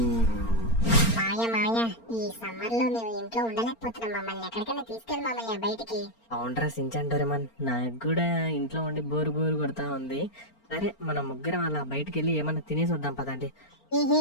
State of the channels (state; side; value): late; right; 4.4 ms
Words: మామయ్య ఈ సమ్మర్ లో మేము ఇంట్లో ఉండలేకపోతున్నాం. మమ్మల్ని ఎక్కడికైనా తీసుకెళ్ళి మామయ్య బయటికి. అవునరా సించాన్ డోరేమాన్, నాకు కూడా ఇంట్లో ఉండి బోరు కొడతా ఉంది. సరే మన ముగ్గురం అలా బయటికి వెళ్ళి ఏమన్నా తినేసి వద్దాం పదండి.